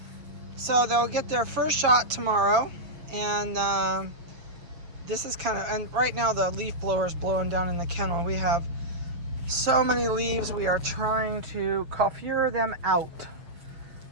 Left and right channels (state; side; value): late; left; 6.8 ms